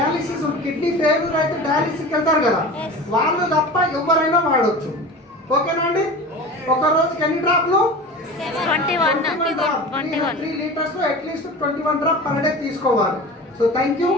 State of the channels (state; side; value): normal; both; correlation 0.34